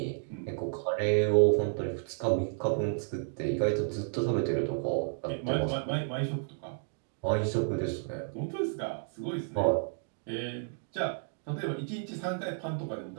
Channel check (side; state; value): left; silent; digital silence